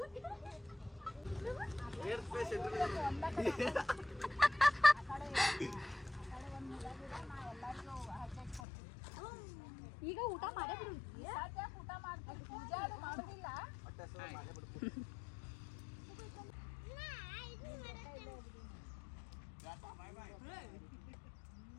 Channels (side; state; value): right; drops out; at 8.6 s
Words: ಈಗ ಊಟ ಮಾಡೇ ಬಿಡು. ಊಟ ಮಾಡ್ತೀವಿ, ಪೂಜೆ ಮಾಡೋದಿಲ್ಲ.